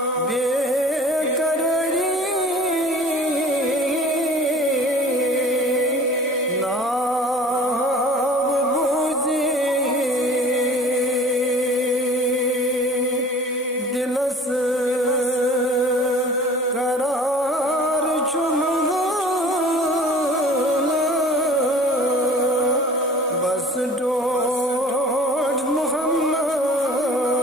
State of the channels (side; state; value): both; normal; correlation 0.45